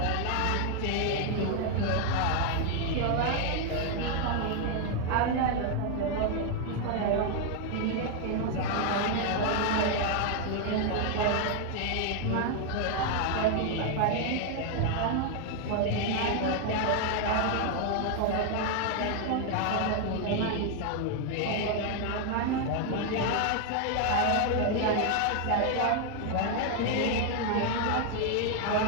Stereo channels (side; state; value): both; different; correlation 0.00